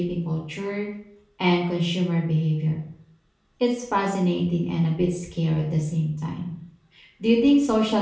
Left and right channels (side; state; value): both; identical; correlation 1.00